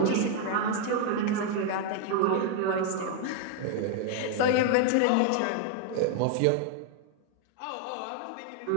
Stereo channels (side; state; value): both; different; correlation 0.00